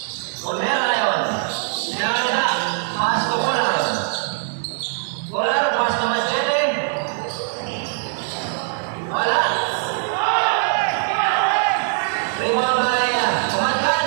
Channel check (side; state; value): left; silent; digital silence